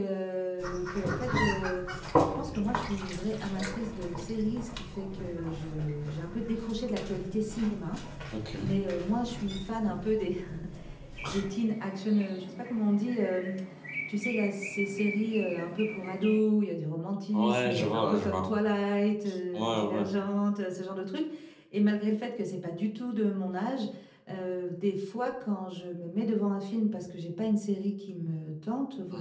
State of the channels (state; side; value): identical; both; correlation 1.00